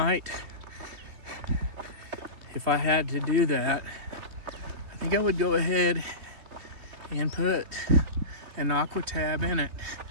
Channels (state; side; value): late; left; 3.1 ms